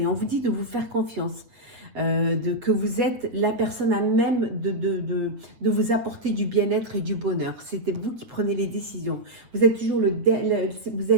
On vous dit de vous faire confiance. Que vous êtes la personne à même de vous apporter du bien-être et du bonheur. C'était vous qui prenez les décisions. Vous êtes toujours vous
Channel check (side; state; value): left; late; 8.5 ms